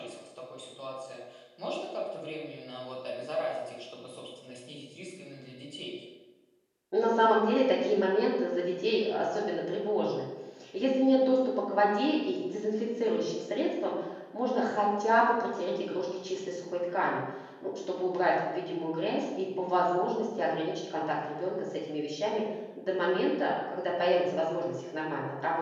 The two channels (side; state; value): both; identical; correlation 1.00